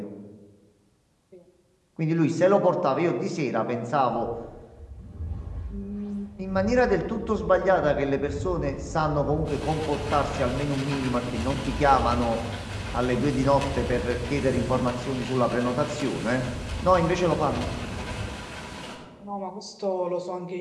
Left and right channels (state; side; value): identical; both; correlation 1.00